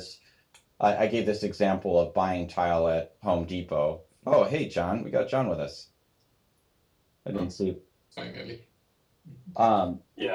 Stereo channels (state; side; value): identical; both; correlation 1.00